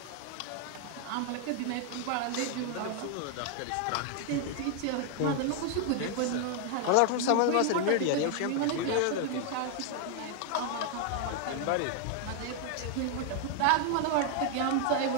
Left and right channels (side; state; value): both; different; correlation 0.00